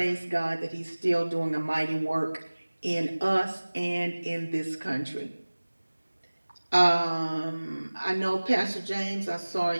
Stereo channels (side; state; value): both; inverted; correlation -1.00